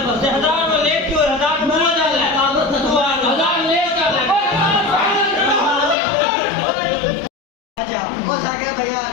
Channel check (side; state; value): right; drops out; at 6.0 s